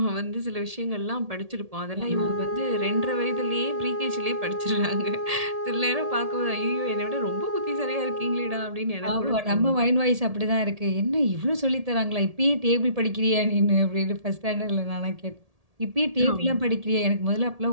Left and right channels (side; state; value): left; late; 1.7 ms